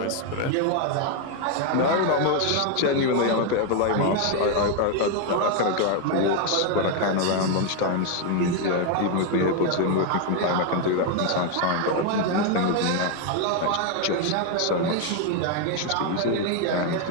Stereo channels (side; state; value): both; different; correlation 0.01